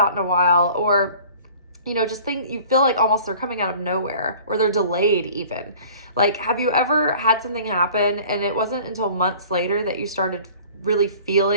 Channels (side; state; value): both; inverted; correlation -0.47